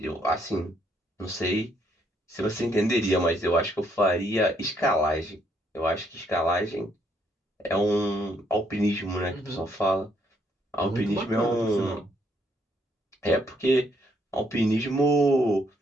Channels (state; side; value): normal; both; correlation 0.71